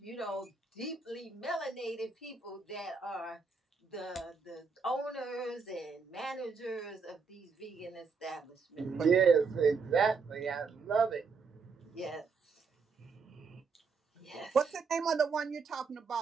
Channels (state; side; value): quieter; left; 5.0 dB